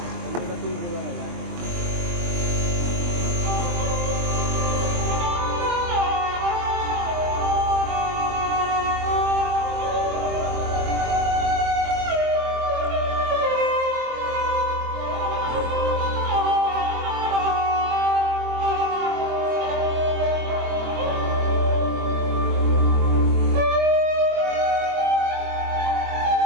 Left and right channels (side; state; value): left; late; 23 ms